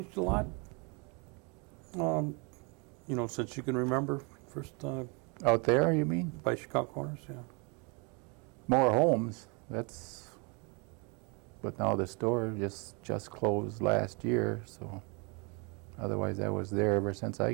a lot? Since you can remember, first Out there, you mean? by Chicago Corners, yeah. More homes. But now the store just closed last year, so otherwise I was there ever since I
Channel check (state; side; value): quieter; left; 32.2 dB